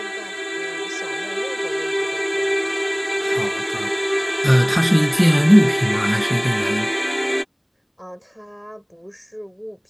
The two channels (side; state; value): both; identical; correlation 1.00